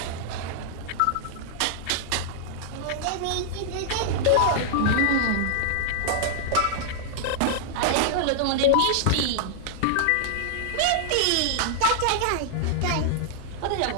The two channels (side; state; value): both; different; correlation -0.01